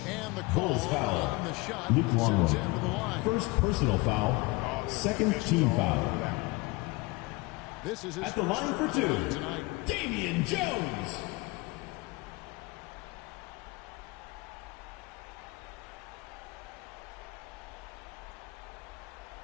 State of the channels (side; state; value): right; quieter; 23.6 dB